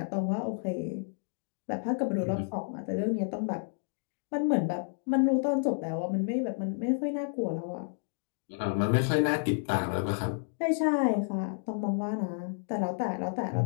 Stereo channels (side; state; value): right; silent; digital silence